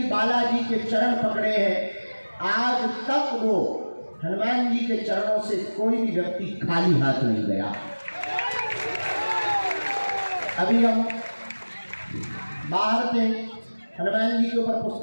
बालाजी के चरण पकड़े हैं, आज तक वो हनुमान जी के चरणों से कोई भी व्यक्ति खाली हाथ नहीं गया। अभी हम बाहर थे, हनुमान जी के ऊपर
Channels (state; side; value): inverted; both; correlation -1.00